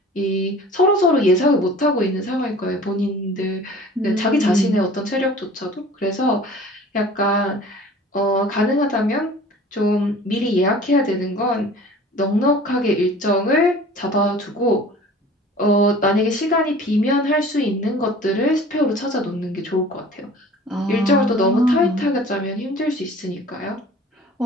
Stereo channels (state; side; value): normal; both; correlation 0.45